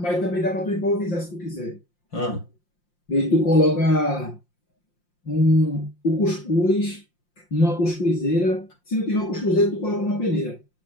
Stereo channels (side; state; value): right; late; 5.7 ms